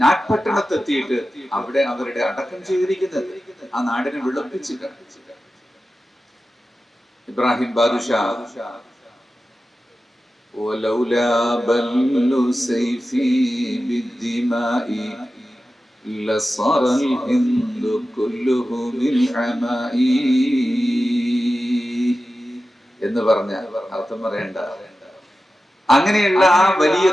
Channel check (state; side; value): normal; both; correlation 0.93